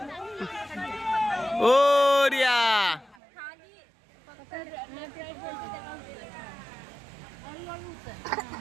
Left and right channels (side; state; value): left; drops out; at 3.2 s